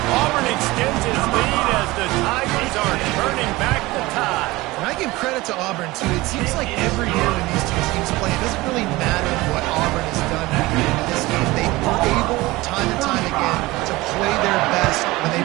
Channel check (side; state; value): left; quieter; 20.2 dB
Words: Auburn extends his lead as the Tigers are turning back the tide. And I give credit to Auburn, too. It seems like every year when these two teams play, it doesn't really matter what Auburn has done in this game. They are able, time and time again, to play their best when